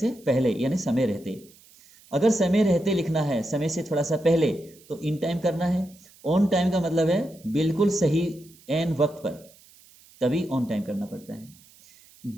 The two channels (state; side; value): noise; right; hiss, 26 dB below the sound